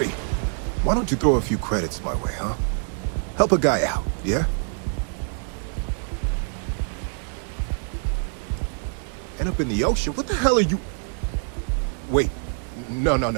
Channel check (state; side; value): silent; left; 58 dB below the other